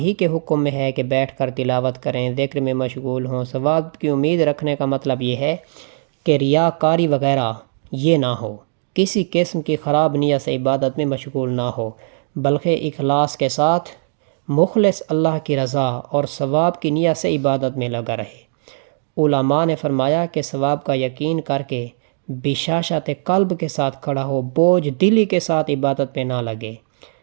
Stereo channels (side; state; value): left; silent; digital silence